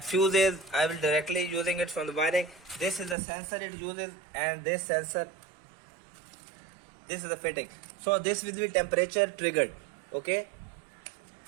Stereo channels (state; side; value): drops out; left; at 3.2 s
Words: fuses. I will directly using it from the wiring. This is the sensor it uses, and this sensor, this is the fitting. So this will be temperature triggered. Okay,